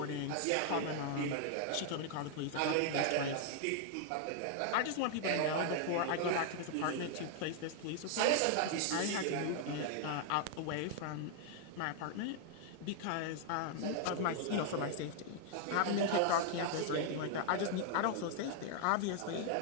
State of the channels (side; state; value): both; different; correlation 0.00